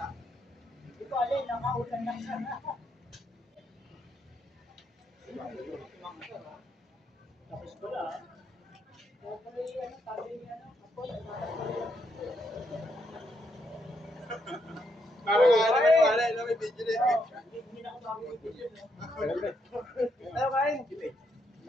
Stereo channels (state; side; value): normal; both; correlation 0.77